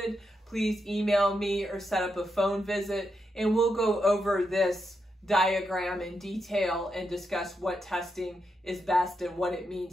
please email me or set up a phone visit, and we'll go over this diagram in detail and discuss what testing is best and what it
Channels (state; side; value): normal; both; correlation 0.84